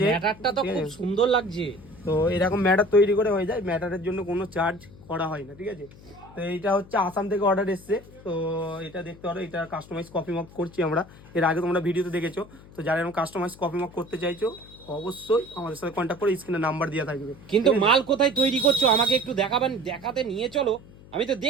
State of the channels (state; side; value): noise; left; hum, 21 dB below the sound